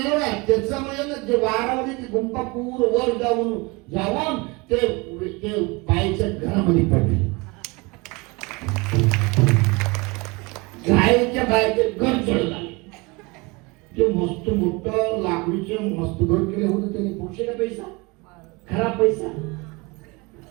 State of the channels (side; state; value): left; quieter; 26.3 dB